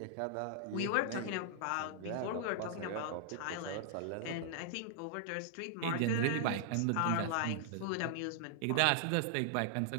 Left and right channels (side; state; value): both; different; correlation -0.01